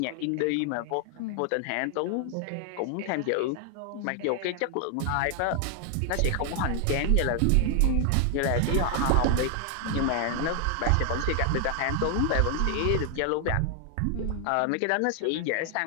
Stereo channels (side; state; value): both; different; correlation 0.00